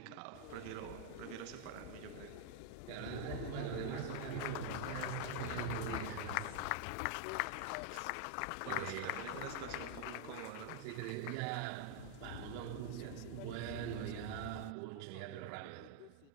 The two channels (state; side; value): different; both; correlation 0.00